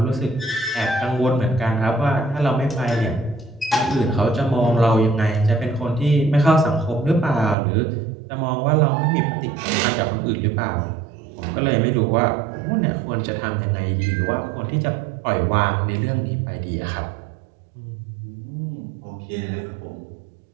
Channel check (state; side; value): drops out; left; at 7.6 s